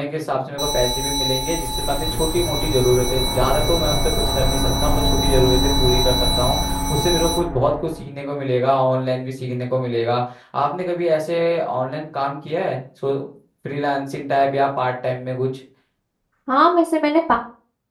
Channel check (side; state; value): both; identical; correlation 1.00